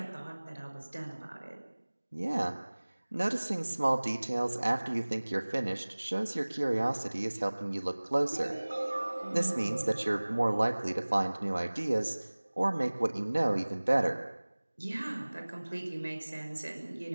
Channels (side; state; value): both; inverted; correlation -1.00